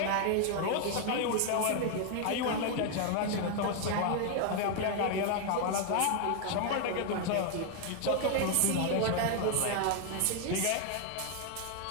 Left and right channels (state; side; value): different; both; correlation 0.00